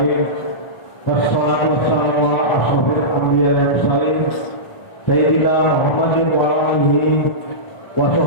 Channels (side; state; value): right; late; 1.4 ms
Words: Wassalatu wassalamu ala asyrofil anbiya wal mursalin sayyidina Muhammadin wa alihi wa